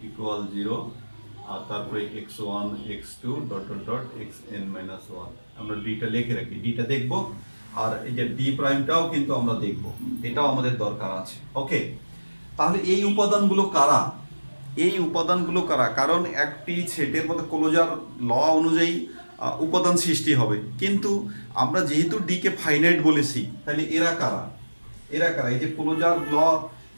ইকুয়াল 0 আর তারপরে x1 x2 dot dot dot xn minus 1। আমরা ডিটা লিখে রাখি, ডিটা দেখব, আর এই যে ডি প্রাইমটাও কিন্তু আমরা দেখব, এটাও আমাদের দরকার আছে। ওকে, তাহলে এই উপাদানগুলো কারা? কারণ একটি সেটের মধ্যে ক্লোজার ল অনুযায়ী উপাদান সৃষ্টি হবে, কিন্তু আমরা যেহেতু ডি কে ফাইনাইট বলেছি, তাহলে এরা কারা? এই যে ক্লোজার ল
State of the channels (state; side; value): inverted; both; correlation -1.00